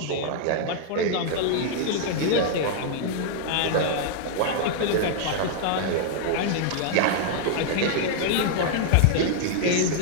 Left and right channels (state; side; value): different; both; correlation -0.01